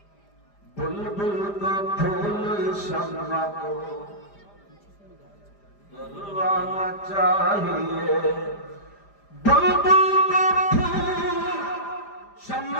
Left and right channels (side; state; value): right; late; 5.0 ms